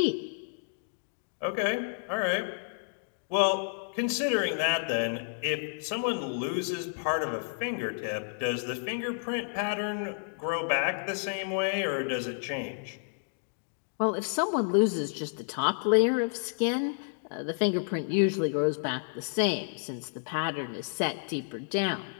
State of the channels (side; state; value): right; silent; digital silence